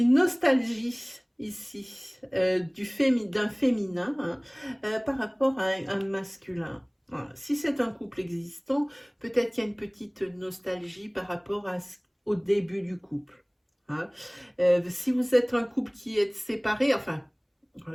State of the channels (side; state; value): both; identical; correlation 1.00